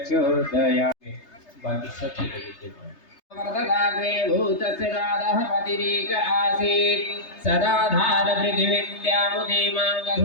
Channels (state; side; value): late; right; 3.3 ms